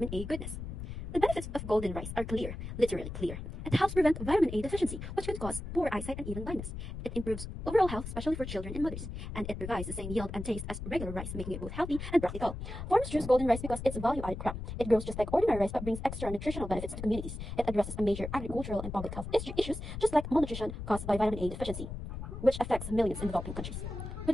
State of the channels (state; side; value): noise; left; rumble, 7 dB below the sound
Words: A goodness. The benefits of golden rice are clear, literally clear. It helps prevent vitamin A deficiency, which could cause poor eyesight and even blindness. It improves overall health, especially for children and mothers. And it provides the same yield and taste as regular rice, making it both healthy and practical. Farmers choose golden rice because it's a value-added crop. It grows just like ordinary rice but brings extra nutritional benefits to communities. It addresses a major agricultural and public health issues, just like malnutrition caused by vitamin A deficiency, which affects millions in developing countries. With